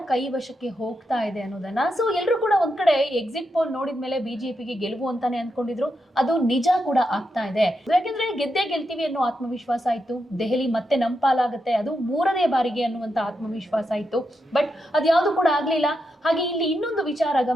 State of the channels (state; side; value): normal; both; correlation 0.85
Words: ಕೈವಶಕ್ಕೆ ಹೋಗ್ತಾ ಇದೆ ಅನ್ನೋದನ್ನ. ಸೊ ಎಲ್ಲರೂ ಕೂಡ ಒಂದ್ ಕಡೆ ಎಕ್ಸಿಟ್ ಪೋಲ್ ನೋಡಿದ್ಮೇಲೆ ಬಿಜೆಪಿಗೆ ಗೆಲುವು ಅಂತಾನೆ ಅನ್ಕೊಂಡಿದ್ರು. ಅದು ನಿಜ ಕೂಡ ಆಗ್ತಾ ಇದೆ. ಯಾಕೆಂದ್ರೆ ಗೆದ್ದೇ ಗೆಲ್ತೀವಿ ಅನ್ನೋ ಆತ್ಮವಿಶ್ವಾಸ ಇತ್ತು. ದೆಹಲಿ ಮತ್ತೆ ನಮ್ಮ ಪಾಲಾಗುತ್ತೆ, ಅದು 3ನೇ ಬಾರಿಗೆ ಅನ್ನುವಂತ ಆತ್ಮವಿಶ್ವಾಸ ಇತ್ತು. ಬಟ್ ಅದ್ಯಾವುದು ಕೂಡ ಆಗ್ಲಿಲ್ಲ. ಹಾಗೆ ಇಲ್ಲಿ ಇನ್ನೊಂದು ವಿಚಾರ